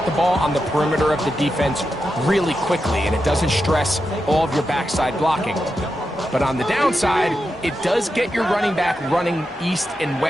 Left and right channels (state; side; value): normal; both; correlation 0.88